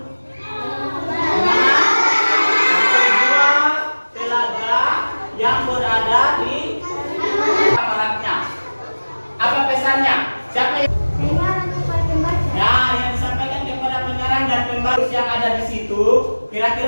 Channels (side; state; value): both; inverted; correlation -1.00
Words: telaga yang berada di kamarnya. Apa pesannya? Siapa yang yang disampaikan kepada pengarang dan pembaca yang ada di situ?